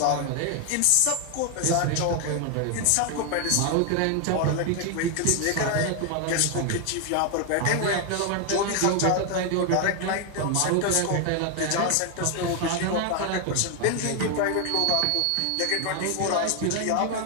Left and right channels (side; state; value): both; different; correlation 0.01